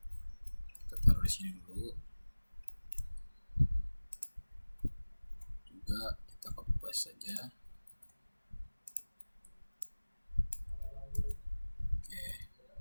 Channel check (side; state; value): both; inverted; correlation -1.00